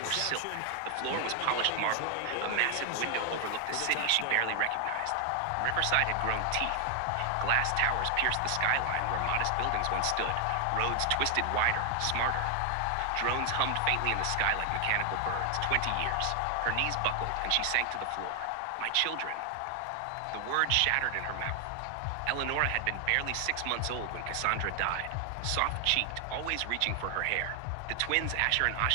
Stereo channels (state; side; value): different; both; correlation 0.00